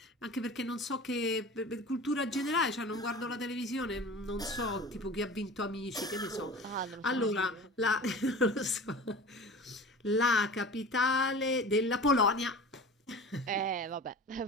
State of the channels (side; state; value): both; normal; correlation 0.37